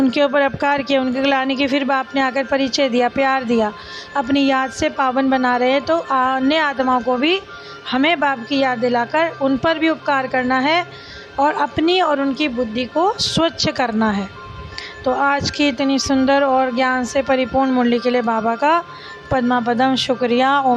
ऊपर अपकार किया, उनकी ग्लानि की, फिर बाप ने आकर परिचय दिया, प्यार दिया, अपनी याद से पावन बना रहे हैं, तो अन्य आत्माओं को भी हमें बाप की याद दिलाकर उन पर भी उपकार करना है और अपनी और उनकी बुद्धि को स्वच्छ करना है। तो आज की इतनी सुंदर और ज्ञान से परिपूर्ण मुरली के लिए बाबा का पद्मा पदम शुक्रिया।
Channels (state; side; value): identical; both; correlation 1.00